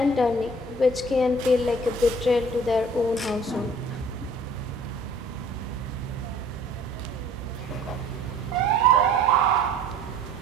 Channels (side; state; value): both; normal; correlation 0.51